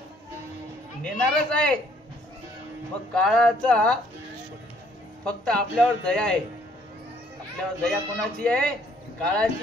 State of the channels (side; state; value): both; normal; correlation 0.63